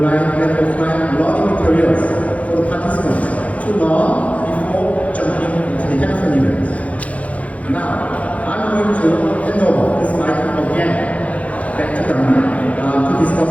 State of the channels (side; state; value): right; late; 0.067 ms